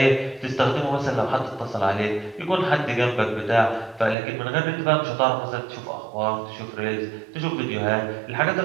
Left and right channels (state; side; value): drops out; left; at 4.2 s